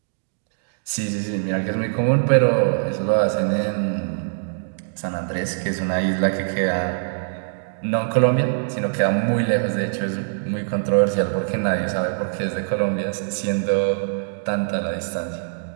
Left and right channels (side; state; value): left; silent; digital silence